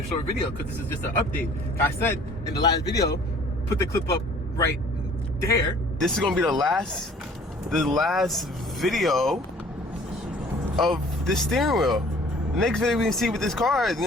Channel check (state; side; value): normal; both; correlation 0.52